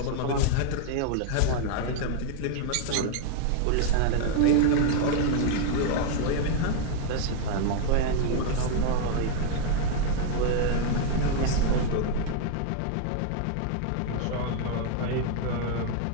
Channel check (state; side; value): different; both; correlation 0.00